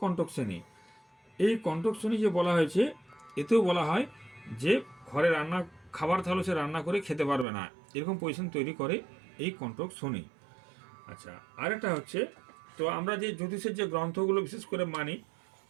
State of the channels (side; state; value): left; drops out; at 7.5 s